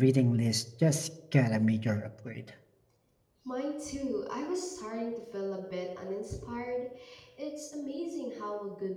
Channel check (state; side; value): identical; both; correlation 1.00